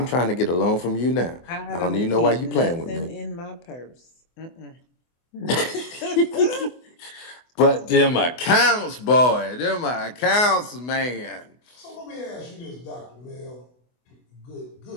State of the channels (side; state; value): right; late; 24 ms